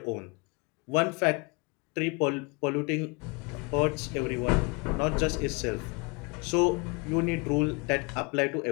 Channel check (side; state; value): right; quieter; 30.3 dB